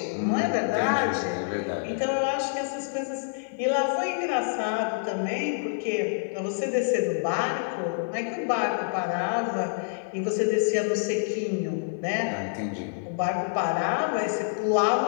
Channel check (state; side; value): silent; right; digital silence